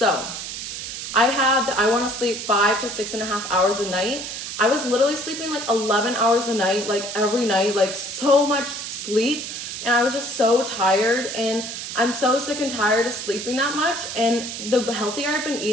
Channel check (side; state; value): right; noise; hiss, 7 dB below the sound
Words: I want to sleep 5 to 6.5 hours a night. I was literally sleeping 11 hours a night, every night, so much sleep. And I was just so tired, and I'm so sick and tired of sleeping that much. And the healthier I've been